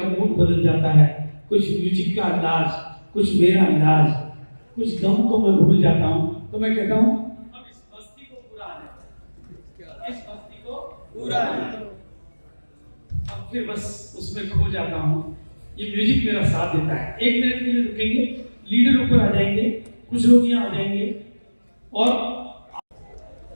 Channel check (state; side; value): inverted; both; correlation -1.00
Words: मूड बदल जाता है, कुछ म्यूजिक का अंदाज, कुछ मेरा अंदाज, कुछ गम को मैं भूल जाता हूं। तो मैं कहता हूं अब इस मस्ती को पूरा आने दो, इस मस्ती को पूरा आने दो। अब फिर बस उसमें खो जाता हूं, ये म्यूजिक मेरा साथ देता है। एक मिनट के लिए रुकेंगे, लीडर ऊपर आ जाएंगे, कुछ लोग यहाँ आ जाएंगे, और